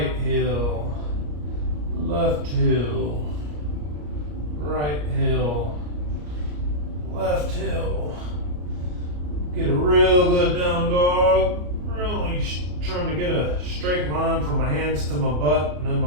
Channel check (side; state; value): left; late; 34 ms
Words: heel, left heel, right heel, left heel. Get a real good down dog. Really trying to get a straight line from my hands to my butt and then